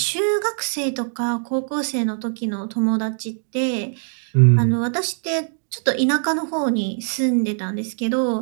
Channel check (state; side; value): silent; left; 61 dB below the other